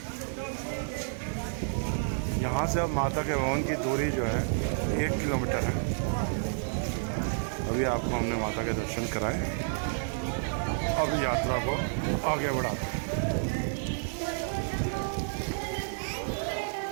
यहाँ से अब माता के भवन की दूरी जो है 1 किलोमीटर है। अभी आपको हमने माता के दर्शन कराए, अब यात्रा को आगे बढ़ाते हैं।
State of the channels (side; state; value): left; silent; 58 dB below the other